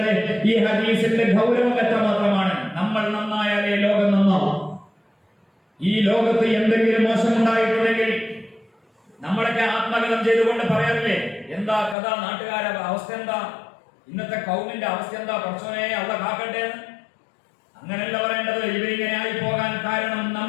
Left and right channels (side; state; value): right; drops out; at 12.0 s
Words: ഈ ഹദീസിന്റെ ഗൗരവം എത്രമാത്രമാണ്. നമ്മൾ നന്നായാലേ ലോകം നന്നാവും. ഈ ലോകത്ത് എന്തെങ്കിലും മോശമുണ്ടായിട്ടുണ്ടെങ്കിൽ നമ്മളൊക്കെ ആത്മകഥം ചെയ്തുകൊണ്ട് പറയാറില്ലേ, എന്താ കഥ, നാട്ടുകാരുടെ അവസ്ഥ എന്താ, ഇന്നത്തെ കൗമിന്റെ അവസ്ഥ എന്താ, പടച്ചോനെ അള്ളാഹ് കാക്കട്ടെ. അങ്ങനെയല്ല പറയേണ്ടത്. ഇവരിങ്ങനെ ആയി പോകാൻ കാരണം